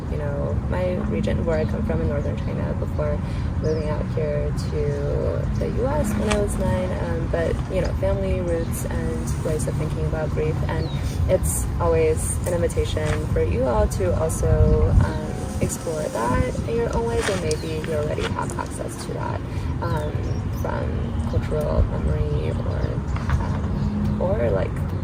you know, my region where I come from in northern China before moving out here to the US when I was 9, but, you know, family roots and ways of thinking about grief, and it's always an invitation for you all to also explore that in your own ways, and maybe you already have access to that from cultural memory or like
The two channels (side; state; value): both; identical; correlation 1.00